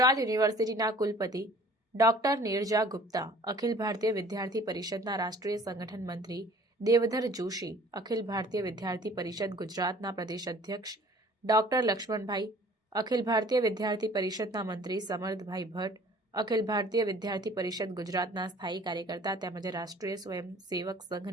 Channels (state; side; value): normal; both; correlation 0.51